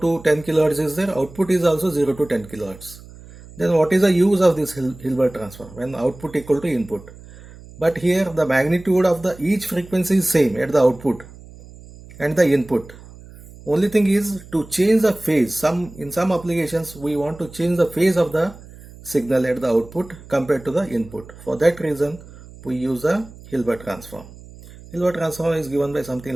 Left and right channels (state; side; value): noise; right; hum, 19 dB below the sound